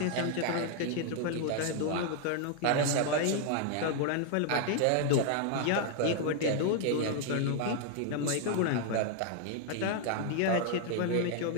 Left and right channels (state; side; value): different; both; correlation 0.00